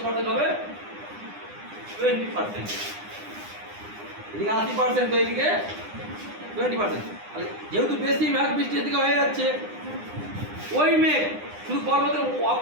পার্সেন্ট হবে? 20%। এদিকে 80%, তো এদিকে 20%। যেহেতু বেশি মেঘ বৃষ্টি এদিকে হয়ে যাচ্ছে, ওই মেঘ শুধু পর্বতের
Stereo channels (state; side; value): late; left; 9.8 ms